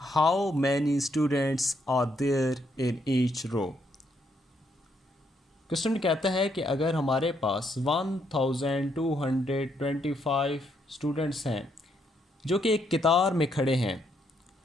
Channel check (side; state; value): both; normal; correlation 0.75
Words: How many students are there in each row? Question कहता है कि अगर हमारे पास 1225 students हैं जो कि एक कतार में खड़े हैं,